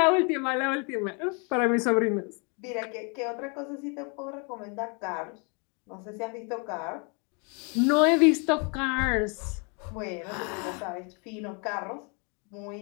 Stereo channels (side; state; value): right; quieter; 34.9 dB